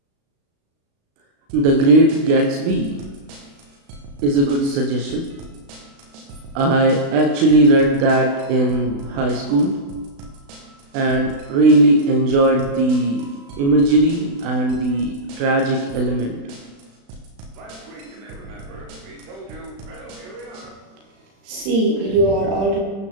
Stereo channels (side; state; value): left; late; 36 ms